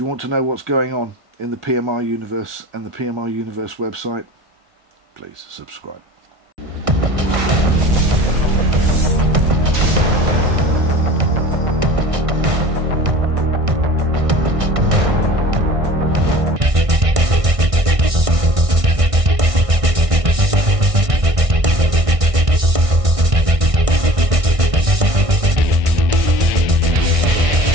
want to know what's going on in the PMR universe and the PMR universe website, please subscribe.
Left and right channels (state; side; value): late; left; 1.6 ms